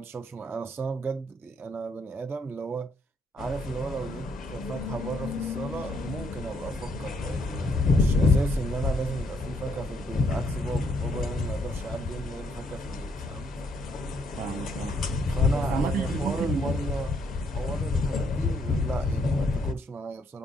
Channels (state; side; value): normal; both; correlation 0.72